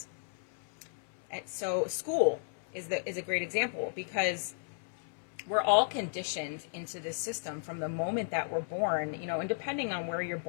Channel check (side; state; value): right; silent; 55 dB below the other